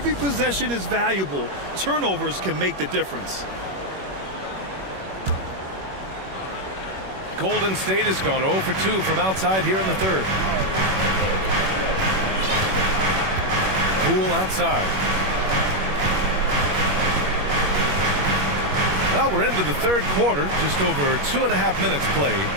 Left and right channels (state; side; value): late; left; 21 ms